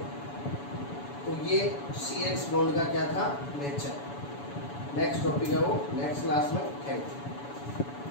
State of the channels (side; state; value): right; late; 7.0 ms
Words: तो ये CX बॉन्ड का क्या था, नेचर। नेक्स्ट टॉपिक है वो नेक्स्ट क्लास में। Thank you.